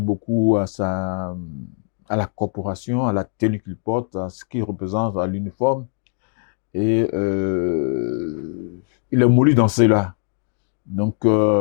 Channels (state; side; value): silent; right; 65 dB below the other